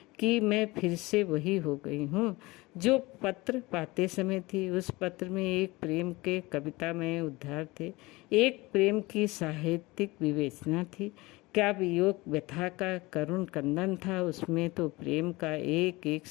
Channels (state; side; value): quieter; right; 21.9 dB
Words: कि मैं फिर से वही हो गई हूँ जो पत्र पाते समय थी। उस पत्र में एक प्रेम के कवितामय उद्धार थे, एक प्रेम की साहित्यिक विवेचना थी। क्या वियोग व्यथा का करुण कंदन था? उसमें तो प्रेम का एक एक